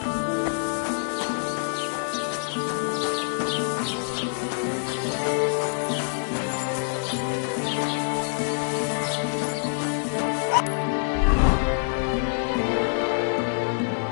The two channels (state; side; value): silent; right; digital silence